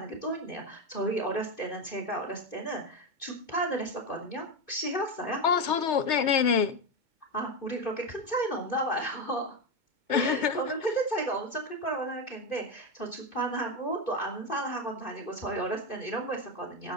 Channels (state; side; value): late; left; 2.2 ms